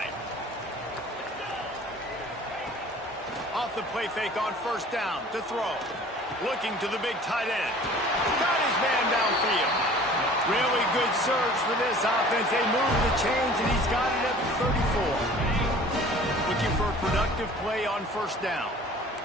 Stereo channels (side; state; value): both; normal; correlation 0.47